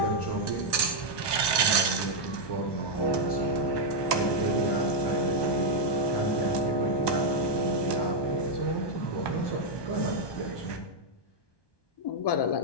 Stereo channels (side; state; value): right; late; 1.2 ms